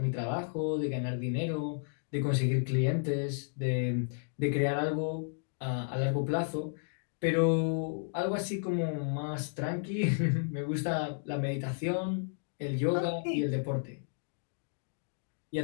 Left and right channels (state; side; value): silent; right; digital silence